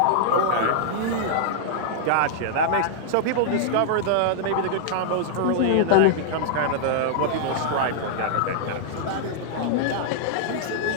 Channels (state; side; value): different; both; correlation -0.01